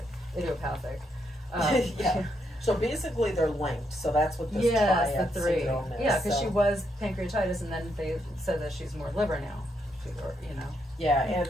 idiopathic. So basically, they're linked. So that's what this triad syndrome is. Yeah, because she was pancreatitis, and then they said that she's more liver now. You know. Yeah, and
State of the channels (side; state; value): both; normal; correlation 0.78